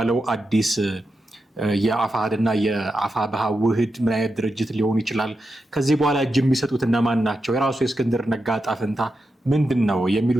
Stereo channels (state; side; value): normal; both; correlation 0.88